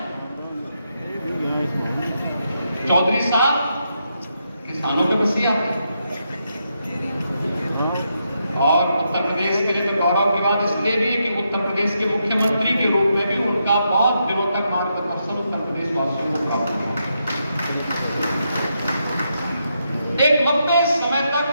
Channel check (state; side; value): inverted; both; correlation -0.82